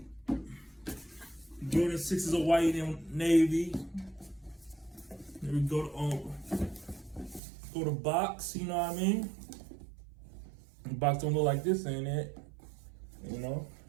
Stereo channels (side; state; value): left; drops out; at 7.4 s